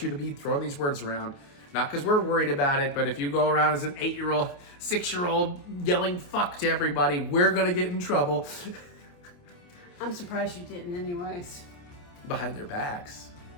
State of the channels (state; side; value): late; right; 28 ms